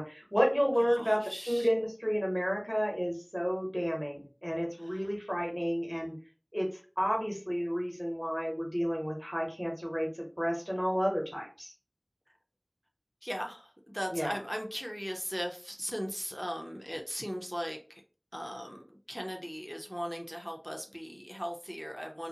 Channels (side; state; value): both; identical; correlation 1.00